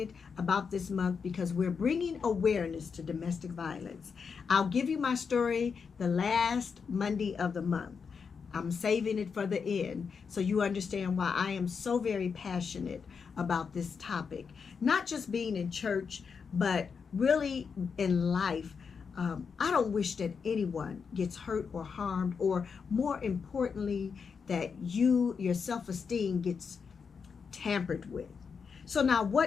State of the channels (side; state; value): right; quieter; 5.9 dB